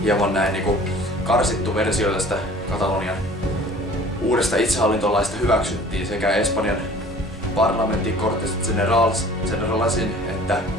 hieman näin niin kuin karsittu versio tästä Katalonian uudesta itsehallintolaista hyväksyttiin sekä Espanjan parlamentin Cortes Generalasin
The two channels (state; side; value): normal; both; correlation 0.48